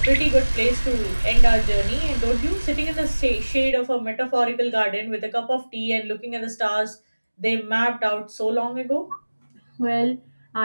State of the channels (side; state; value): both; inverted; correlation -1.00